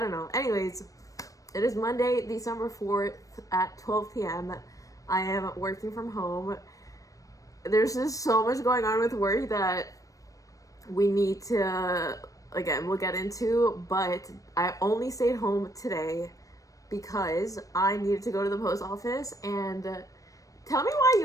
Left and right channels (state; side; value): late; right; 0.16 ms